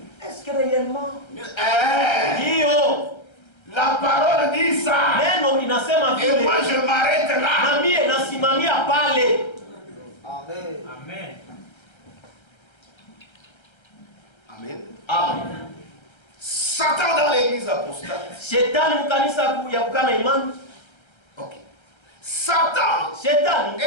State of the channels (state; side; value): late; right; 1.3 ms